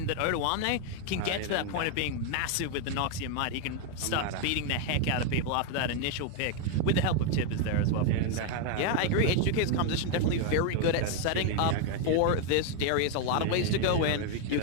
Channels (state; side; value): different; both; correlation 0.01